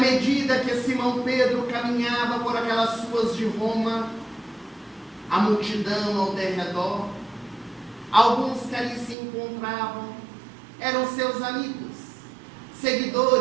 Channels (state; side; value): drops out; left; at 9.2 s